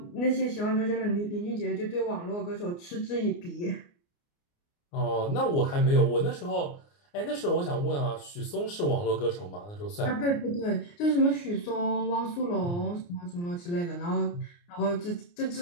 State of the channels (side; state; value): right; late; 29 ms